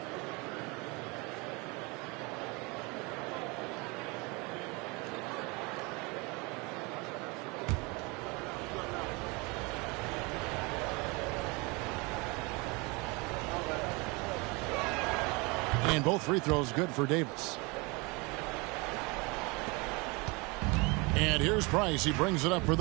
And both free throws good for Davis. And here's Price. He brings it up for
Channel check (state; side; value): quieter; left; 27.3 dB